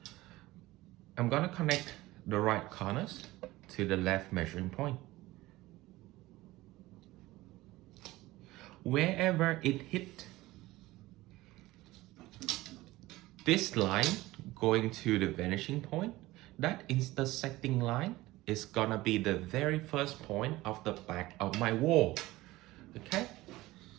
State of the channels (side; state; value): left; quieter; 18.5 dB